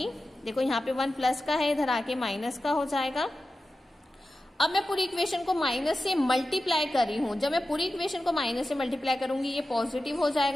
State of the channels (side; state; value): both; normal; correlation 0.93